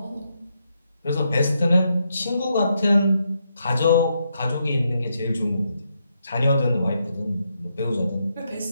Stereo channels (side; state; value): both; inverted; correlation -0.80